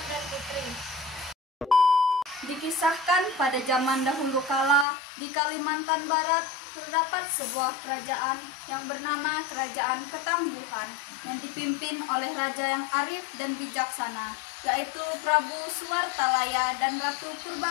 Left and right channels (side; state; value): right; drops out; at 4.9 s